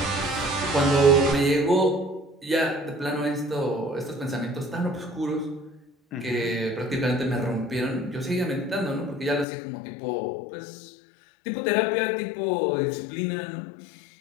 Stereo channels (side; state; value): right; drops out; at 9.5 s